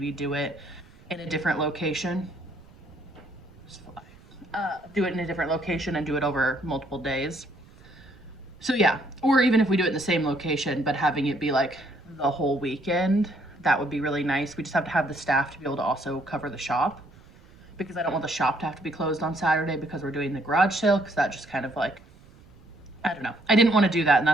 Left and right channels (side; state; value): right; noise; rumble, 24 dB below the sound